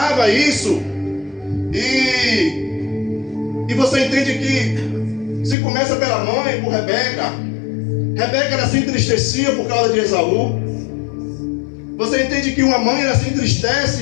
isso. E você entende que se começa pela mãe, por Rebeca. Rebeca ela se entristecia por causa de Esaú. Você entende que uma mãe ela se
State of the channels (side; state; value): right; drops out; at 5.6 s